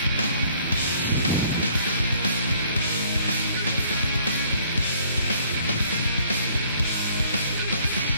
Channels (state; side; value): inverted; both; correlation -0.60